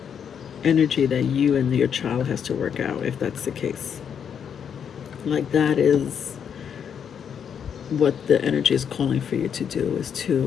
energy that you and your child has to work out, if that's the case. Like, that is what the energy is calling for you to do, is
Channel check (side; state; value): right; quieter; 7.8 dB